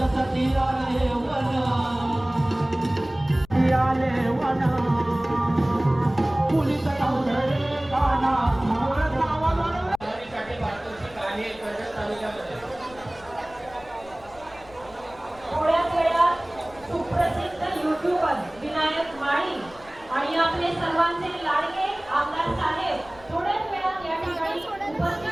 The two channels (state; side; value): noise; left; rumble, 23 dB below the sound